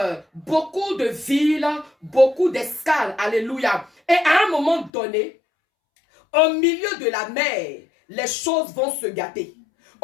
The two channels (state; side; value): drops out; right; at 4.9 s